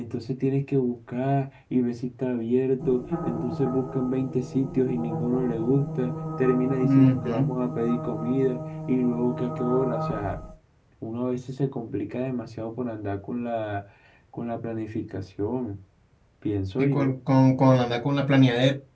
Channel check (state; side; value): identical; both; correlation 1.00